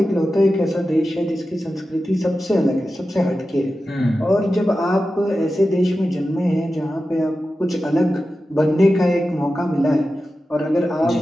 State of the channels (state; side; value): normal; both; correlation 0.93